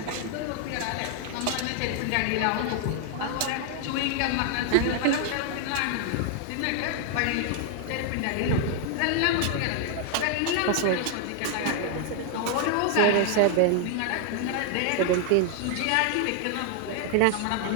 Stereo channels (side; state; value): both; different; correlation 0.00